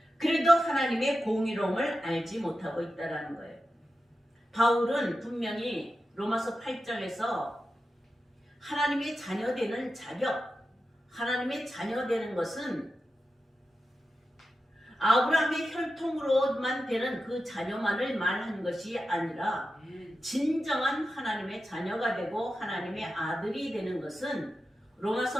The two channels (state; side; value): normal; both; correlation 0.91